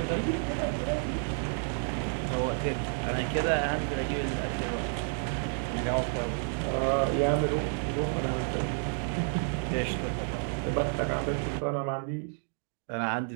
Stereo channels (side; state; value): left; silent; 57 dB below the other